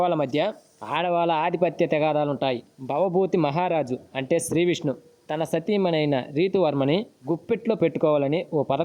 మధ్య ఆడవాళ్ళ ఆధిపత్య తెగాదాలుంటాయి. భవభూతి మహారాజు అంటే శ్రీ విష్ణు తన సతీమణైన రీతువర్మని గుప్పెట్లో పెట్టుకోవాలని ఓ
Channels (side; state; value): both; identical; correlation 1.00